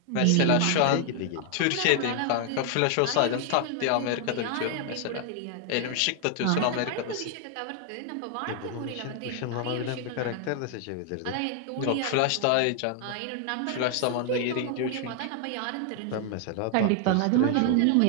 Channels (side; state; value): both; different; correlation 0.00